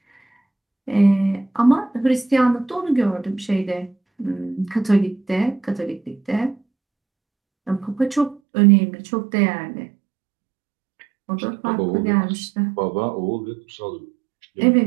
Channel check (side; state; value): left; drops out; at 8.4 s